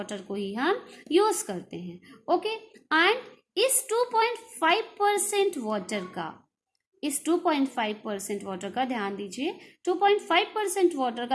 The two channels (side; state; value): both; identical; correlation 1.00